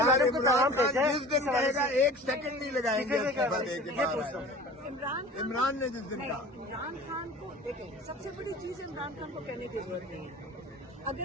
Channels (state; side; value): normal; both; correlation 0.41